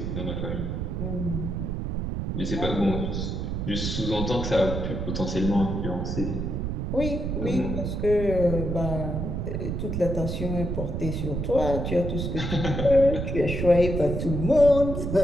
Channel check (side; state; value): right; noise; rumble, 2 dB below the sound